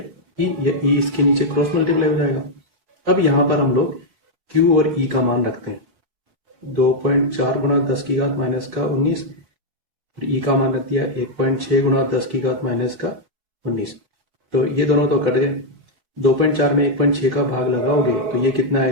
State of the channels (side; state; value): left; late; 4.3 ms